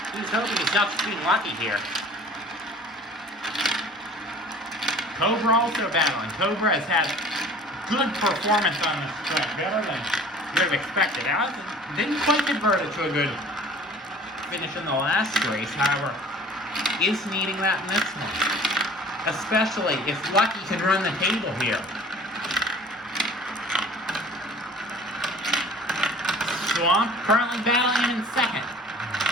he's hoping he's not just being lucky here. Cobra also battling. Cobra has had good performance on this track, better than you would have expected. Now, didn't quite convert it to a good finish in the last race, however, is needing that in this one. Especially if Lucky can run the table here. Swamp currently battling him in second.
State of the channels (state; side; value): normal; both; correlation 0.46